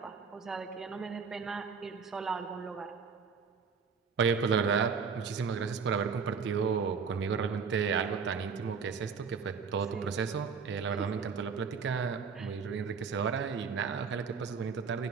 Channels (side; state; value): left; quieter; 5.8 dB